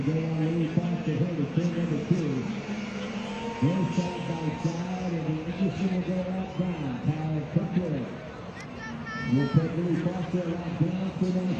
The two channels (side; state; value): both; identical; correlation 1.00